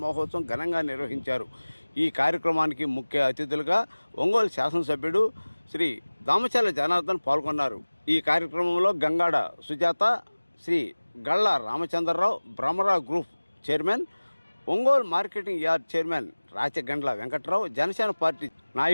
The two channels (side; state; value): both; inverted; correlation -1.00